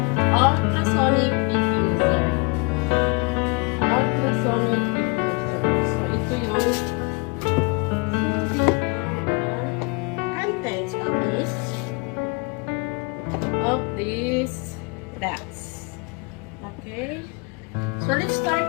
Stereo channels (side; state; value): right; quieter; 30.0 dB